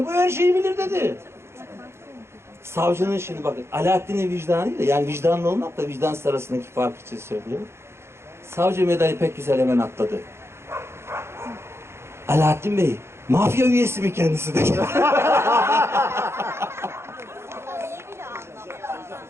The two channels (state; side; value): late; left; 0.12 ms